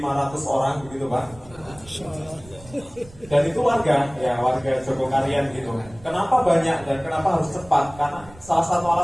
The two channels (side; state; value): right; noise; rumble, 21 dB below the sound